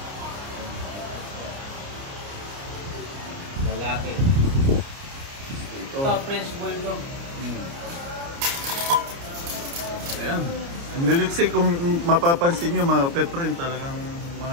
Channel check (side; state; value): left; late; 29 ms